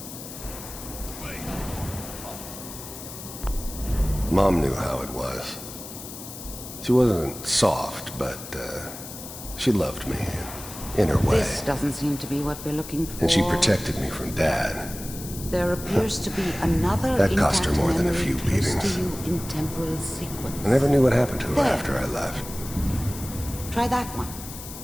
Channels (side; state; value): left; noise; hiss, 12 dB below the sound